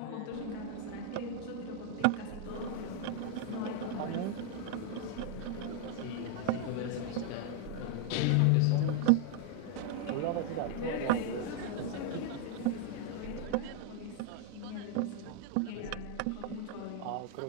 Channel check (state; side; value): different; both; correlation 0.00